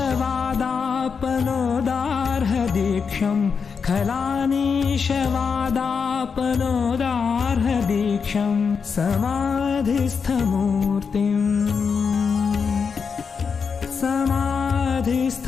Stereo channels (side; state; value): right; quieter; 5.8 dB